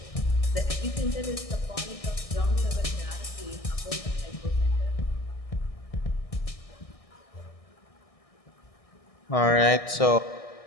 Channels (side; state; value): right; late; 1.6 ms